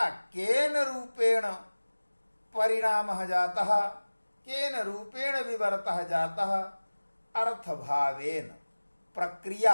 केन रूपेण परिणामः जातः, केन रूपेण विवर्तः जातः, अर्थभावेन,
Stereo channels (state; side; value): inverted; both; correlation -1.00